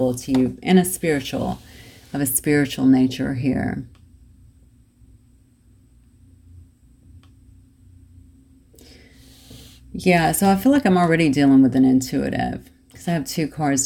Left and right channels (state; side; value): identical; both; correlation 1.00